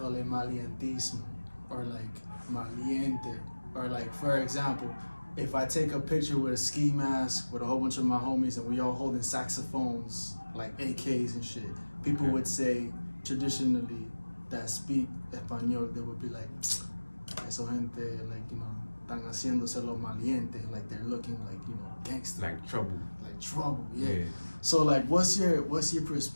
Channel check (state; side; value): inverted; both; correlation -1.00